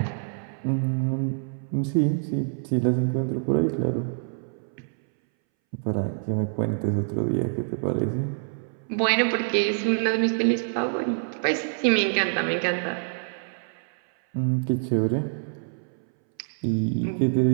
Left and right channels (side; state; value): left; silent; 61 dB below the other